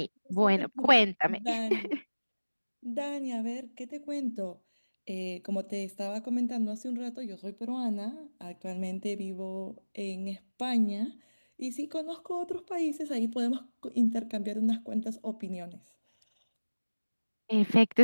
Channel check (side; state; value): both; inverted; correlation -1.00